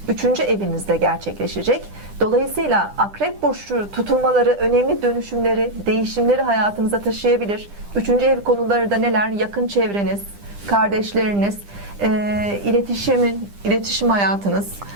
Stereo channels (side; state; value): left; late; 10 ms